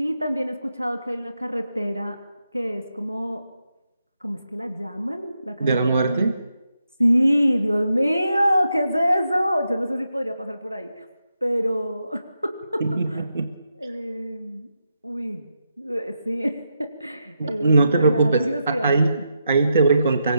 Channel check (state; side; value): inverted; both; correlation -0.85